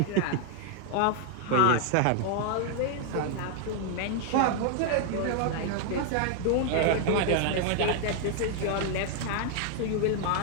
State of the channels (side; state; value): both; different; correlation 0.00